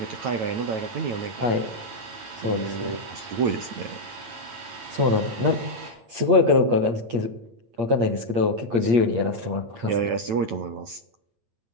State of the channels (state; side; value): late; left; 8.6 ms